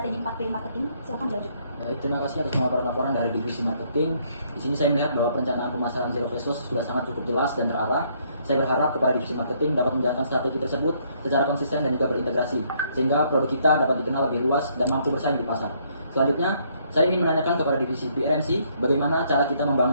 4P marketing, silakan dilanjut. Baik, terima kasih atas laporan dari divisi marketing. Di sini saya melihat bahwa perencanaan pemasaran Zero Face Wash sudah sangat cukup jelas dan terarah. Saya berharap kepada divisi marketing dapat menjalankan strategi tersebut secara konsisten dan juga berintegrasi, sehingga produk kita dapat dikenal lebih luas dan mampu bersaing di pasar. Selanjutnya, saya ingin menanyakan kepada divisi PRMC bagaimana cara kita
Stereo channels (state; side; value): inverted; both; correlation -0.68